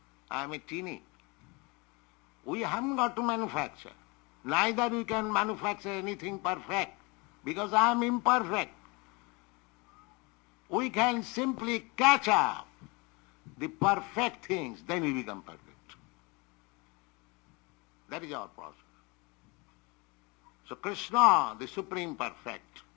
I am a teeny. We haven't got to manufacture. Neither we can manufacture anything perfect, because I am imperfect. We can simply catch up the perfect things, then we become perfect. That is our process. So Krishna, the Supreme Perfect,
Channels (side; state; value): right; quieter; 27.7 dB